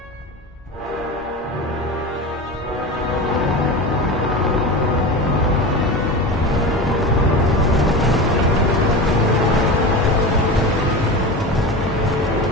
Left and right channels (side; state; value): both; normal; correlation 0.27